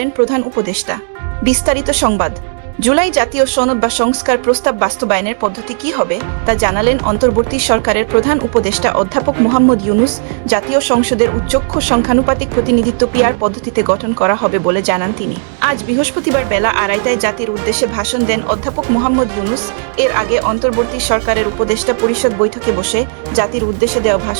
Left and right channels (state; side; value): silent; left; 71 dB below the other